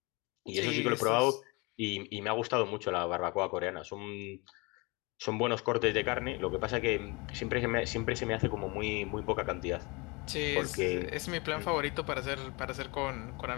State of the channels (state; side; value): quieter; right; 27.5 dB